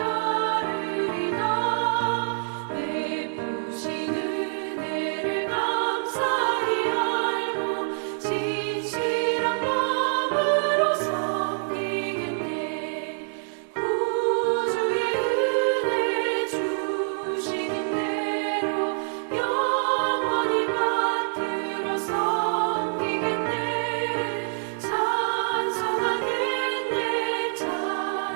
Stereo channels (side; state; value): left; silent; digital silence